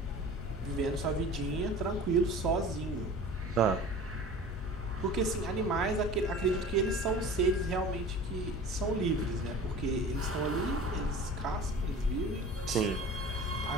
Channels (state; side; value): normal; both; correlation 0.40